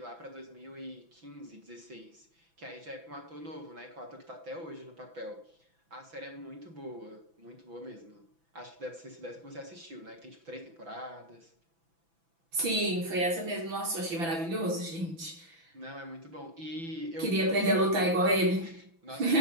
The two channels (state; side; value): late; left; 6.0 ms